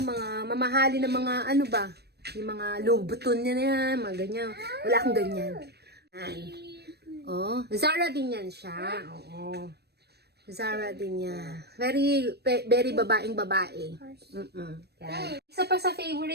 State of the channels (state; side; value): late; left; 0.47 ms